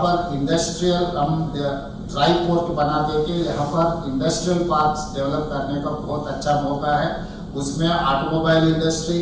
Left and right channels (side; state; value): both; identical; correlation 1.00